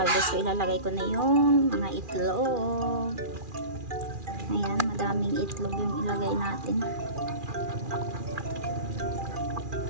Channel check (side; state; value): left; late; 2.4 ms